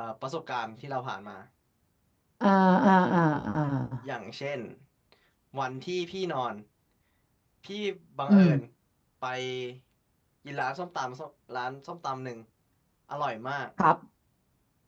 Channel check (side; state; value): both; identical; correlation 1.00